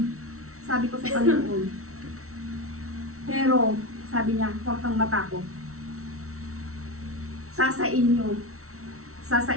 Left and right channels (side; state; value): left; late; 0.63 ms